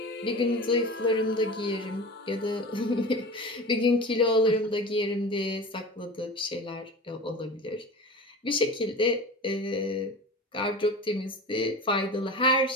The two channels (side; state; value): both; normal; correlation 0.33